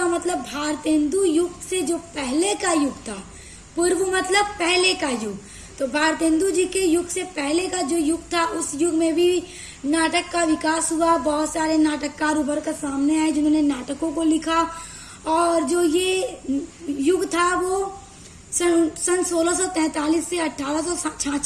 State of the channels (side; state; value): both; identical; correlation 1.00